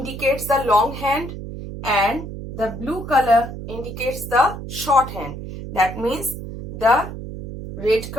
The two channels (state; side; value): noise; right; hum, 9 dB below the sound